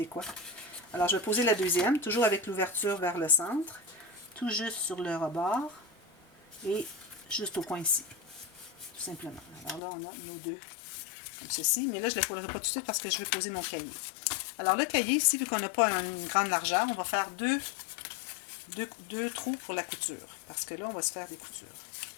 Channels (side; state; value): right; drops out; at 9.8 s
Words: Alors, je vais poser la deuxième, toujours avec l'ouverture vers le centre, tout juste sur le rebord, et juste au coin ici, tout simplement. Alors là, on a nos deux comme ceci, mais là, je ne les collerai pas tout de suite parce que je vais poser mon cahier. Alors, le cahier, ici, vu qu'on n'a pas une grande largeur, on va faire deux trous pour la couture, parce que là, on va se faire des coutures.